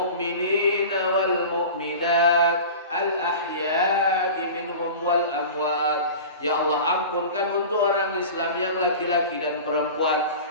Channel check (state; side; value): inverted; both; correlation -0.36